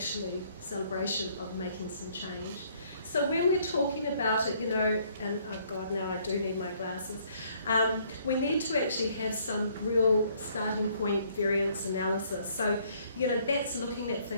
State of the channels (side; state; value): both; inverted; correlation -0.64